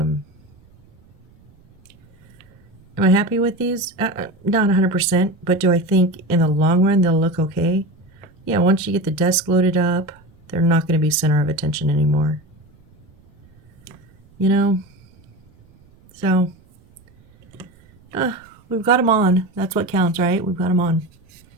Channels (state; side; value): noise; right; rumble, 30 dB below the sound